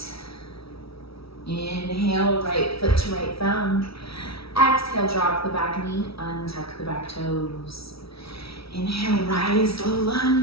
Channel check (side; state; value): right; late; 0.76 ms